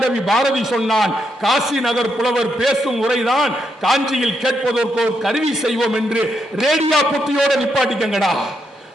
பாரதி சொன்னான், காசி நகர் புலவர் பேசும் உரைதான் காஞ்சியில் கேட்பதற்கு ஒரு கருவி செய்வோம் என்று. ரேடியோ புத்தியோட நிப்பாட்டிக்கங்கடா.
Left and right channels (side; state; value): both; normal; correlation 0.80